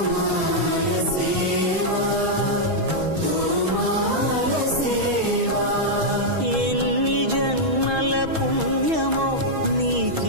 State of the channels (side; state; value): left; late; 6.2 ms